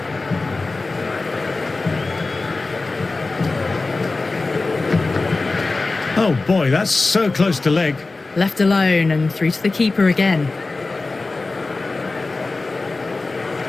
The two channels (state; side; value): quieter; right; 3.5 dB